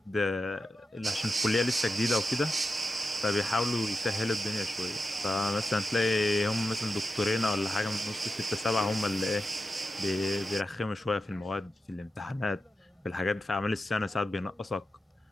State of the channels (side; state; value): both; normal; correlation 0.90